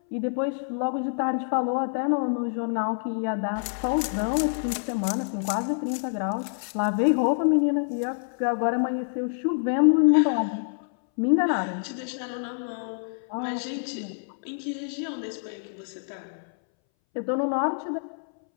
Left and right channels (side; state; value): right; silent; 60 dB below the other